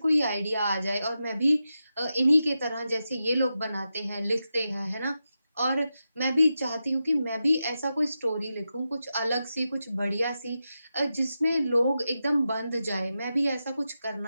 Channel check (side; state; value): both; inverted; correlation -0.90